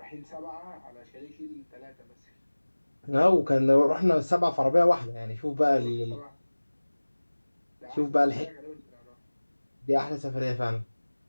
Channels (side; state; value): both; inverted; correlation -1.00